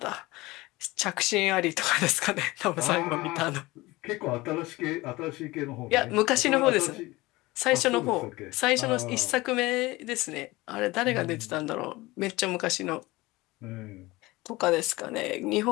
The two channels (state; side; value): quieter; right; 20.7 dB